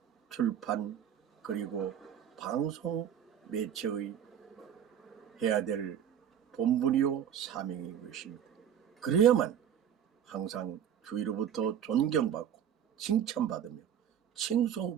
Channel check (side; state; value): left; quieter; 9.4 dB